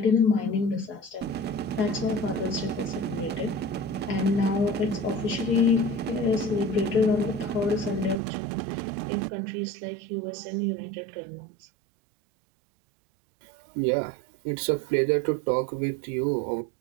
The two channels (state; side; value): drops out; left; at 8.2 s